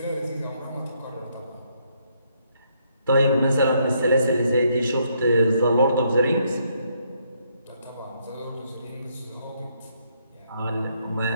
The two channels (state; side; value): inverted; both; correlation -0.73